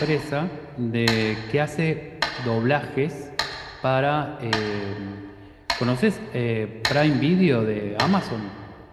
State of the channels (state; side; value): identical; both; correlation 1.00